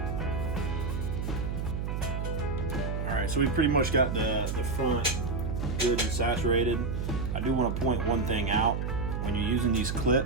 Alright, so we pretty much got the front good and saturated. I do want to point one thing out. When you're using these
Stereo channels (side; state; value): right; noise; hum, 2 dB below the sound